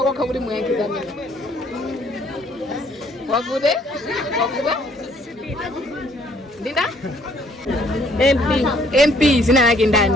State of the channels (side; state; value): both; normal; correlation 0.63